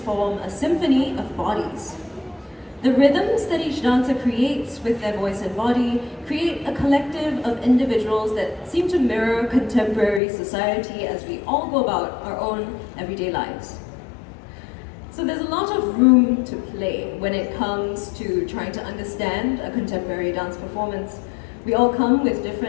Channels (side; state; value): right; drops out; at 10.2 s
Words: a symphony of bodies. The rhythms that each dancer creates with their voice and body create a collective of individuals that seem to mirror contemporary society as we all go about our own everyday lives. So there's a lot of room to play when it comes to trying to understand a contemporary dance performance. We all come with